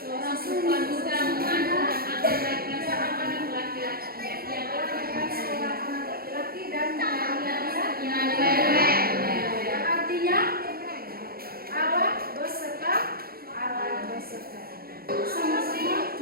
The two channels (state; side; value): late; left; 0.44 ms